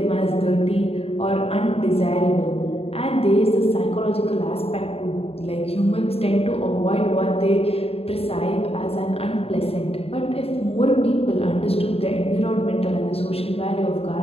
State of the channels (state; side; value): late; right; 0.28 ms